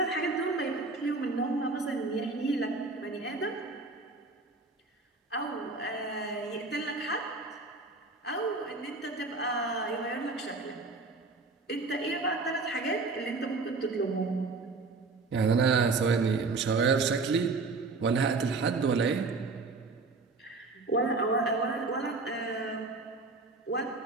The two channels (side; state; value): left; quieter; 3.8 dB